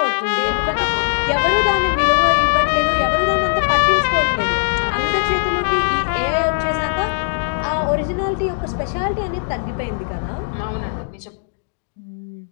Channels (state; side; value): silent; right; digital silence